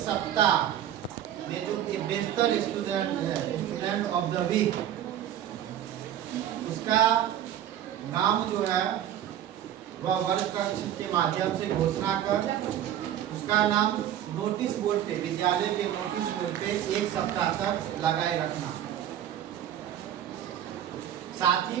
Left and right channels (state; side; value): quieter; left; 11.0 dB